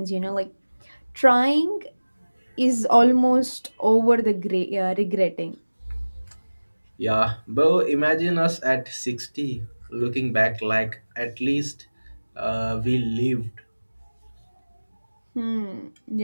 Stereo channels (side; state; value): both; inverted; correlation -1.00